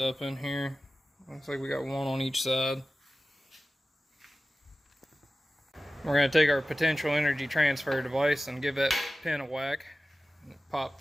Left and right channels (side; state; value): both; normal; correlation 0.95